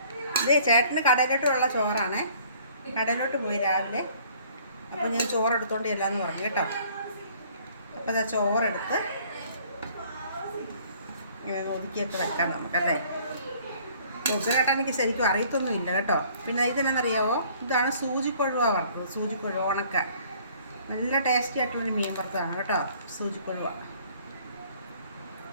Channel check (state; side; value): inverted; both; correlation -0.57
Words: ഇതേ ചേട്ടന് കടയിലോട്ടുള്ള ചോറാണ്. കടയിലോട്ട് പോയി രാവിലെ. അപ്പോൾ ഞാൻ ചോറെടുത്തോണ്ട് ചെല്ലാന്ന് പറഞ്ഞു കേട്ടോ. അപ്പോൾ അതാ ചോറെടുത്ത് ഇങ്ങനെ ഒതുക്കിയൊക്കെ വെക്കാം നമുക്കല്ലേ. പൊതിച്ചോറേട്ടാ എനിക്ക് ശരിക്കും അറിയത്തൊന്നുമില്ല കേട്ടോ. പിന്നെ ഇതെന്നറിയാവോ, ഇതാണ് സൂചിക്കൊഴുവ വറുത്തത്. സൂചിക്കൊഴുവ ഉണക്ക നല്ല ടേസ്റ്റി ആയിട്ടുള്ളൊരു മീൻ വറുത്തതാണ് കേട്ടോ, സൂചിക്കൊഴുവ.